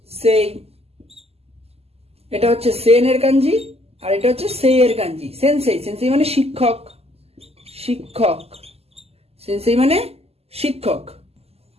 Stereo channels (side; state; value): left; late; 0.29 ms